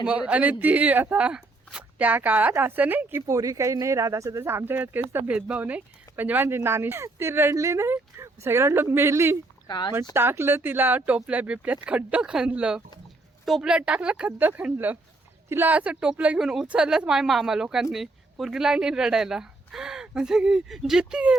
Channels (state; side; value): quieter; left; 3.1 dB